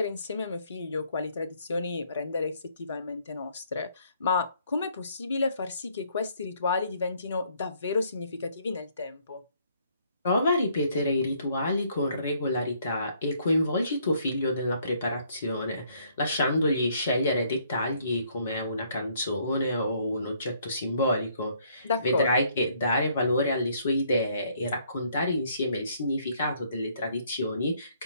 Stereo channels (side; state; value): both; inverted; correlation -0.66